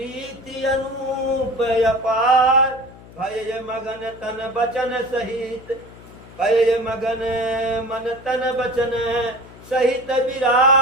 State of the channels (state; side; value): noise; left; hum, 20 dB below the sound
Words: अनूप अपार। भय मगन तन बचन सहित, भय मगन मन तन बचन सहित